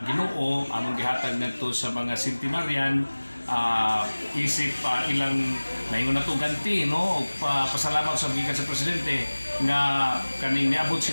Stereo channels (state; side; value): inverted; both; correlation -1.00